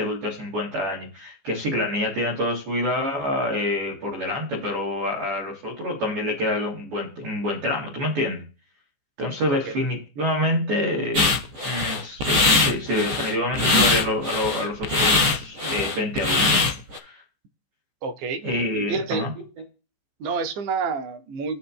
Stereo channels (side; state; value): left; late; 14 ms